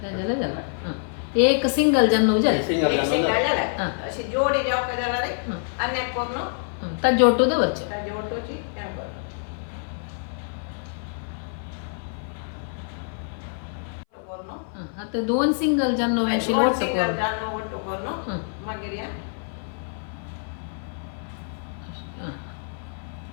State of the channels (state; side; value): silent; right; 58 dB below the other